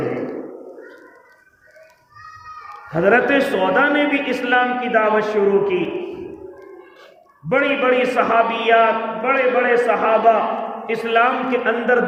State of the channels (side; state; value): both; identical; correlation 1.00